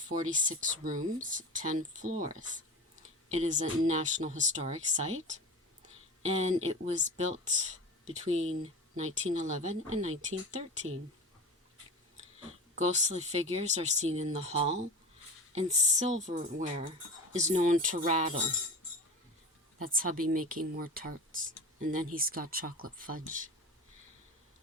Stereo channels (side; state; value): both; normal; correlation 0.31